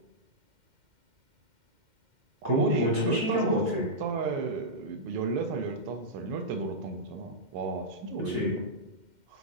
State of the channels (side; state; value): left; late; 2.1 ms